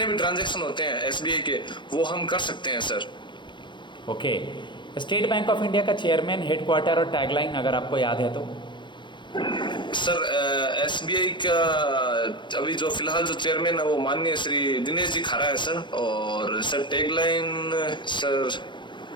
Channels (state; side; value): late; right; 0.23 ms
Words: भी ट्रांजैक्शन होते हैं SBI के, वो हम कर सकते हैं sir. Okay, state bank of India का चेयरमैन, हेडक्वार्टर और टैगलाइन अगर आपको याद है तो? सर SBI का अभी जो फिलहाल जो चेयरमैन है वो माननीय श्री दिनेश जी खारा है सर। और sir tagline sir